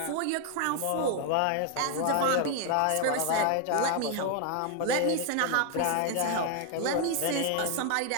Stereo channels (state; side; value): different; both; correlation 0.00